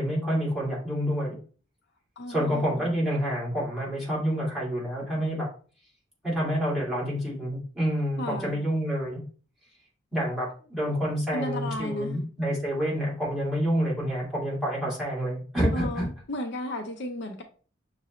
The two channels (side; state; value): both; normal; correlation 0.73